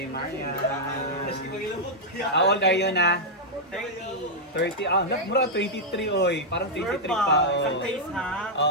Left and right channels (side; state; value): both; normal; correlation -0.04